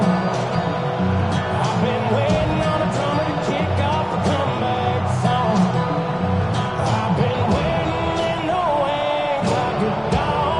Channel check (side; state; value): left; noise; rumble, 24 dB below the sound